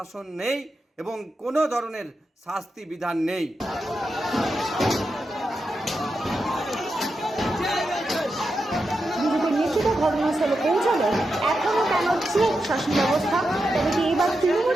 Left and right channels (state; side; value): normal; both; correlation 0.88